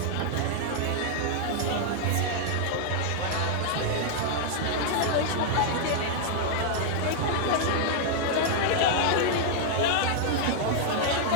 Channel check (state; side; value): different; both; correlation 0.00